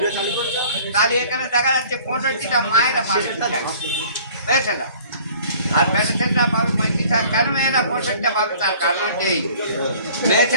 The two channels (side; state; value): both; inverted; correlation -0.50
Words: তাহলে এখানে দেখা যাচ্ছে 65টা মায়েরা পাবে, মেয়েছেলা, আর মেয়ে ছেলেরা পাবে 35টা। কেন মেয়েরা 65টা পাবে? তার কারণ হচ্ছে এই মেয়ে